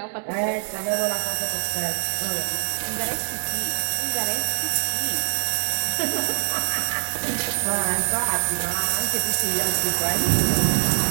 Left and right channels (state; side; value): silent; left; 63 dB below the other